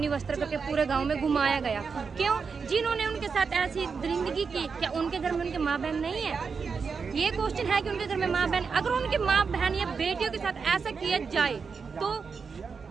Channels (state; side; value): quieter; left; 5.5 dB